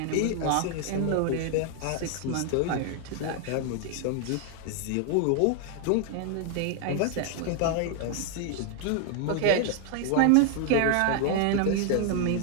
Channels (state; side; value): different; both; correlation 0.00